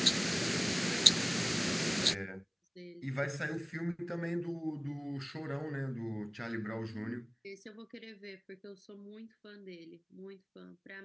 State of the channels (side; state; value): both; identical; correlation 1.00